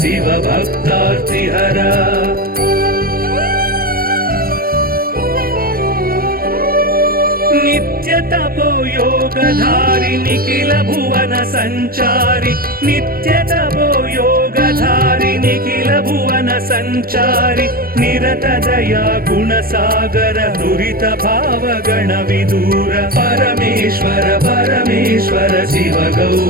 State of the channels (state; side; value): late; left; 0.43 ms